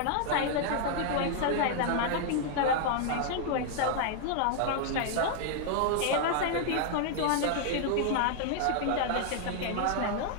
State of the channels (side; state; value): both; different; correlation 0.00